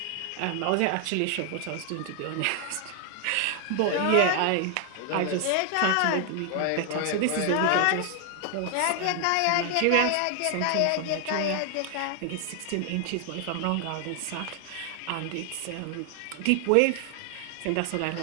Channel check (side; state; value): both; different; correlation 0.00